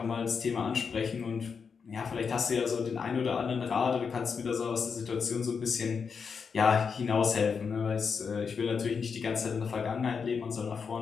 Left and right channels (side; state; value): right; quieter; 5.9 dB